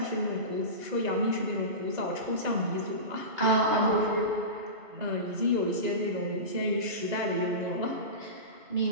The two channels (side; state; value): left; late; 2.0 ms